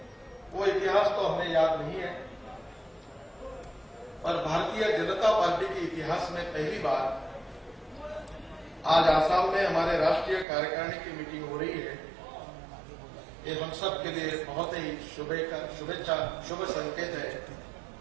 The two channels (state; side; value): drops out; left; at 10.5 s